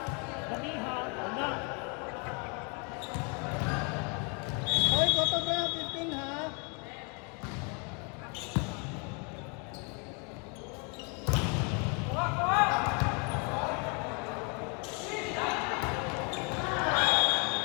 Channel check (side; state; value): right; quieter; 34.7 dB